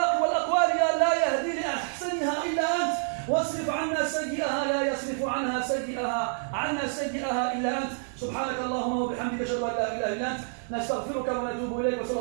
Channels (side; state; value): left; silent; 59 dB below the other